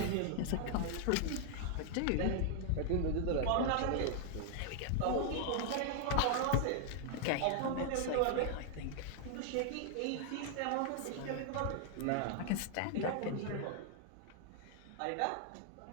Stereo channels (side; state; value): both; different; correlation 0.00